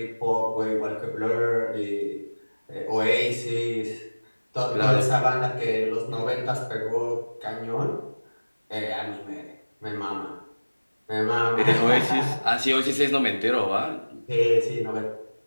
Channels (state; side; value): inverted; both; correlation -1.00